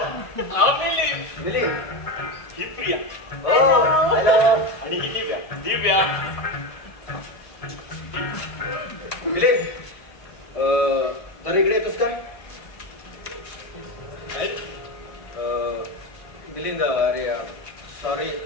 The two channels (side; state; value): right; late; 1.5 ms